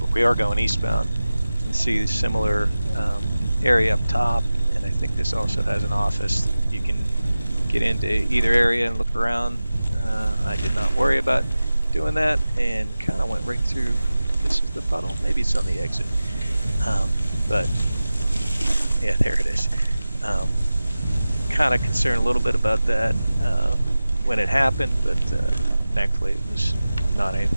but we are going eastbound. You can see the similar area up top, and I think this also has an office. You can get into either area and look around. I did not worry about doing that and kind of went right through. This is the puddle. Maybe it's on the exit. But yeah, there it is. Kind of concerned a little bit about that when it happened, but thankfully it was not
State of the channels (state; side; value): inverted; both; correlation -0.96